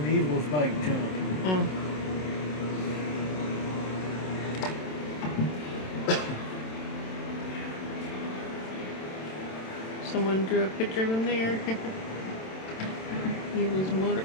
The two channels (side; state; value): right; late; 27 ms